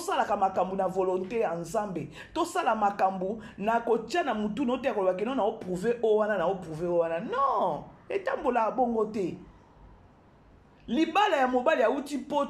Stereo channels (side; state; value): both; identical; correlation 1.00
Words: makambu na volonté ensemble to sala makambu na kotia na mutu no te kolobaki no na o prouver o wana non etambola bongo te libala ya mobali ya uti